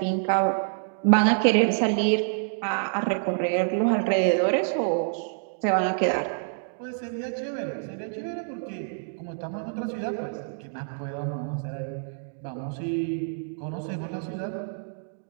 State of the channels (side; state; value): left; silent; digital silence